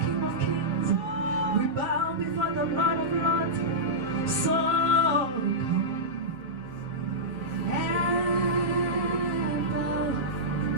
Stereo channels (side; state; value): left; late; 7.5 ms